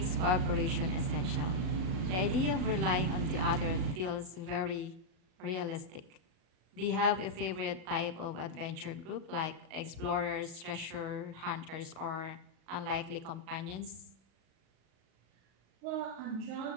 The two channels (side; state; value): left; late; 38 ms